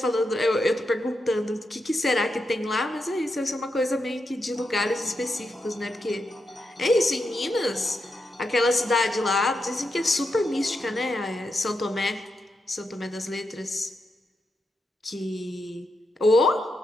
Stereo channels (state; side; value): normal; both; correlation 0.85